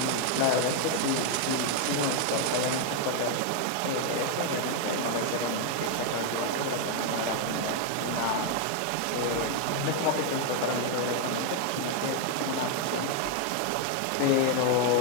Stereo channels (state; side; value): different; both; correlation 0.00